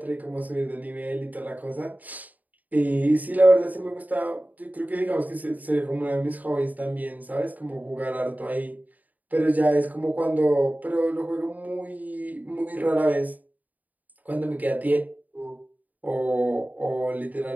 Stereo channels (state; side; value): late; left; 0.078 ms